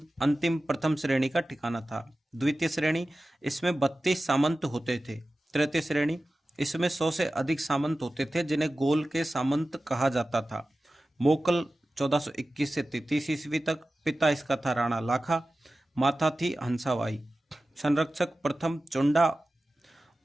अंतिम प्रथम श्रेणी का ठिकाना था। द्वितीय श्रेणी, इसमें 32 सामंत होते थे। तृतीय श्रेणी, इसमें 100 से अधिक सामंत होते थे, जिन्हें गोल के सामंत कहा जाता था। मोकल 1421 से 33 ईस्वी तक। पिता इसका था राणा लाखा, माता थी हंसाबाई। संरक्षक प्रथम चुंडा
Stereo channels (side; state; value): both; normal; correlation 0.95